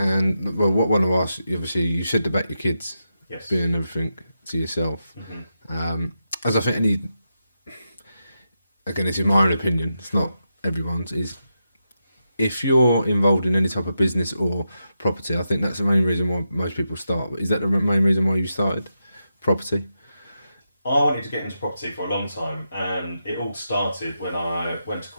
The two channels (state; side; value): inverted; both; correlation -0.87